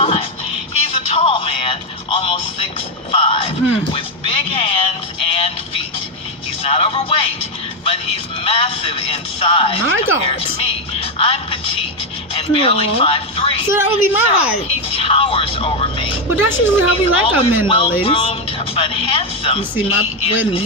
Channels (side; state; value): both; normal; correlation 0.06